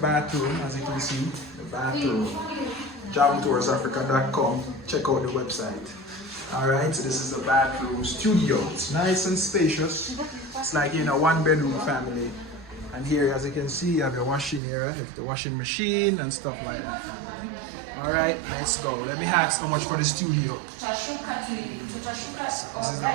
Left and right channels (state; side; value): drops out; left; at 14.6 s